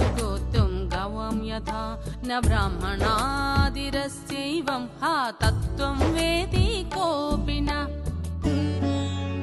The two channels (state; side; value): identical; both; correlation 1.00